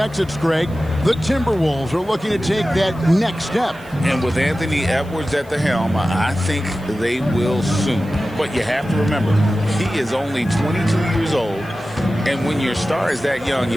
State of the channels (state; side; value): noise; right; hiss, 27 dB below the sound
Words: Greg, the Timberwolves are looking to take that next step. And with Anthony Edwards at the helm, I think they will soon. But you have to remember, he is only 22 years old. And when your star is that young,